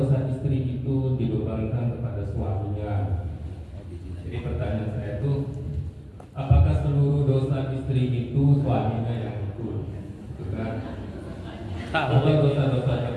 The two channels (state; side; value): identical; both; correlation 1.00